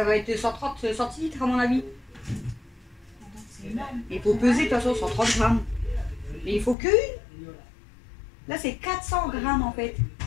va être 130 centilitres à mon avis. C'est énorme. Il faut peser de toute façon 130 g. Mais il faut que une. Là, c'est 400 g en fait.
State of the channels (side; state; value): right; drops out; at 6.8 s